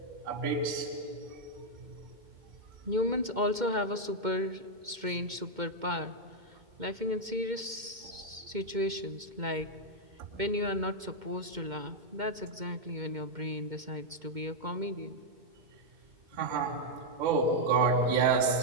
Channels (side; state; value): left; late; 2.1 ms